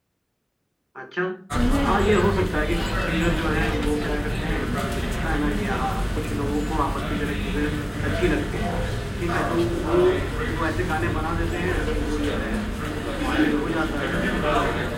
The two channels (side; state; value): both; identical; correlation 1.00